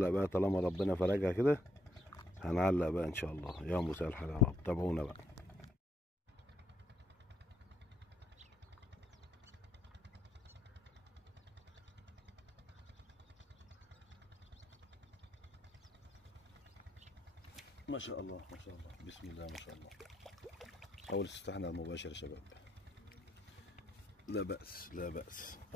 بقى طالما ربنا فرجها كده، هنعلق بقى ان شاء الله. يا مساء الحال يا رب، تابعونا بقى. ما شاء الله ما شاء الله، بسم الله ما شاء الله. اول استفتاحنا على المباشر يا شباب، لا بأس لا بأس.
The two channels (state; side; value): normal; both; correlation 0.75